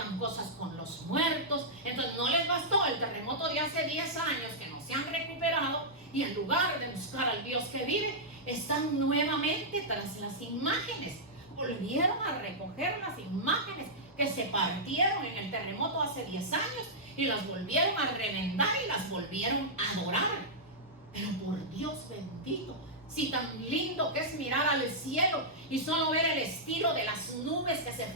cosas con los muertos. Entonces no les bastó el terremoto de hace 10 años que no se han recuperado, y en lugar de buscar al Dios que vive, están nuevamente tras las imágenes. Volvieron a recoger las imágenes que se partieron en el terremoto hace 10 años y las volvieron a remendar y las volvieron a adorar. Pero por Dios bendito, si tan lindo que es mirar al cielo y solo ver el estilo de las nubes que se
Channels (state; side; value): normal; both; correlation -0.10